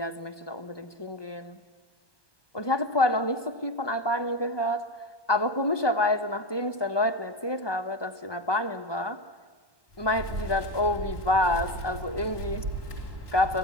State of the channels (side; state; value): right; late; 1.2 ms